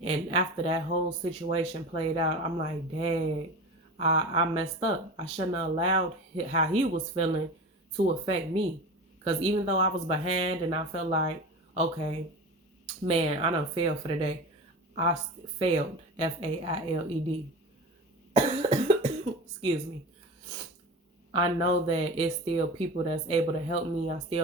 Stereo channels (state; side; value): normal; both; correlation 0.31